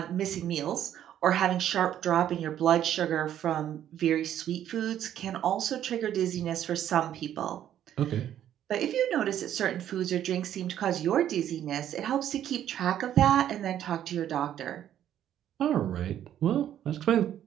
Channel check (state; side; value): quieter; left; 10.9 dB